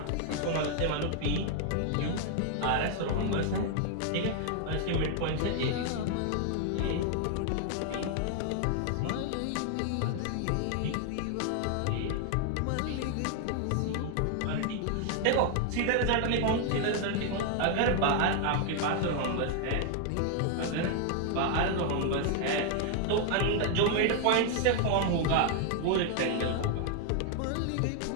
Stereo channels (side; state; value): both; different; correlation 0.00